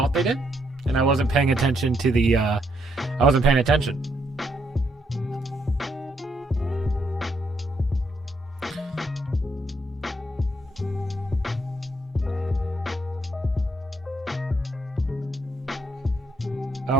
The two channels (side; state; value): both; normal; correlation 0.75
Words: they did, and I wasn't paying attention to the. I wasn't paying attention.